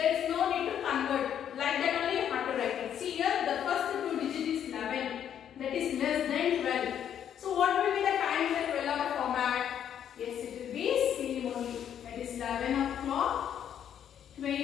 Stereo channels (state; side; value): quieter; right; 9.4 dB